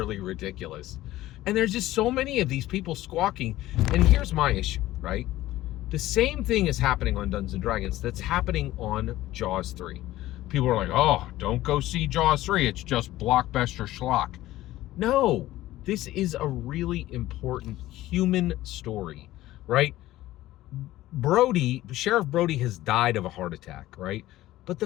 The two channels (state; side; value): quieter; right; 15.7 dB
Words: ridiculous. And there's just so many of these people squawking. And here's my issue, right? The same thing is happening on Dungeons & Dragons that's happening on Jaws 3. People are like, oh, don't go see Jaws 3. It's just blockbuster schlock. No, this is a really important human story, right? Sheriff Brody has died of a heart attack, right? But the